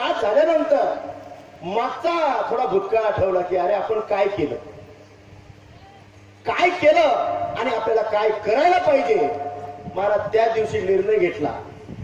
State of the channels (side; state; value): both; identical; correlation 1.00